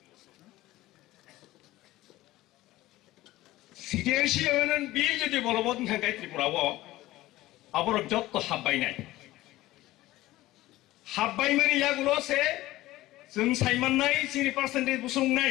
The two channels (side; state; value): right; quieter; 17.0 dB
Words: Citizenship Amendment Bill जुदि बलबत ओंखांखाय त्रिपुराव आबरक जत्तो हाबबायनाय हाबबायमानि यागुलसे जों सायमाननाय Chini percentage बुसुंनाय